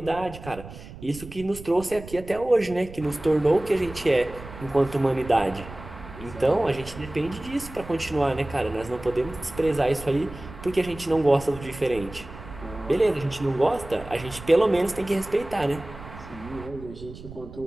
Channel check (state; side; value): noise; right; rumble, 15 dB below the sound